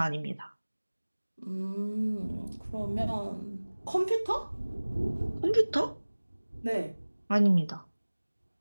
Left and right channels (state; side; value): inverted; both; correlation -1.00